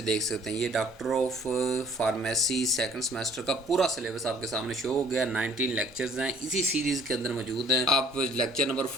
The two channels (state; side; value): normal; both; correlation 0.56